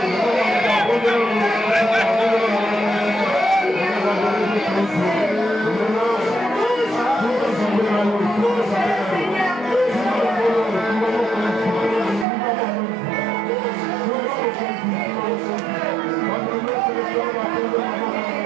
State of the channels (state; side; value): drops out; left; at 12.2 s